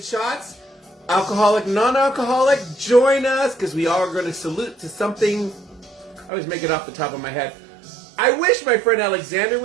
Alcoholic, non-alcoholic, join us. Because we all are going to salute to something. I always make it off the top of my head. I wish my friend Alexander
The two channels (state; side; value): drops out; left; at 6.3 s